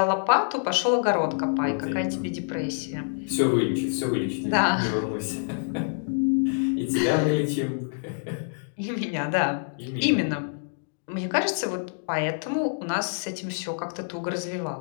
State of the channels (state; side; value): silent; right; digital silence